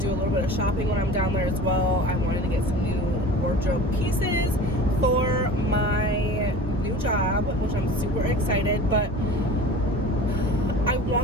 do a little bit of shopping when I'm down there as well. I wanted to get some new wardrobe pieces for my new job, which I'm super excited, but I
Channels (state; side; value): normal; both; correlation 0.38